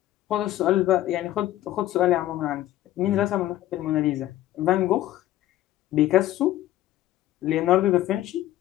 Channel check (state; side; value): quieter; right; 14.3 dB